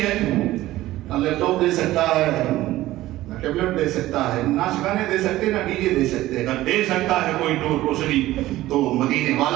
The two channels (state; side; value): quieter; left; 16.0 dB